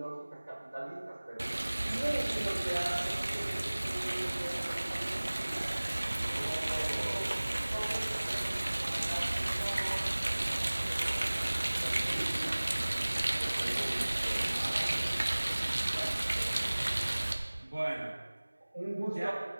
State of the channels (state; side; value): inverted; both; correlation -1.00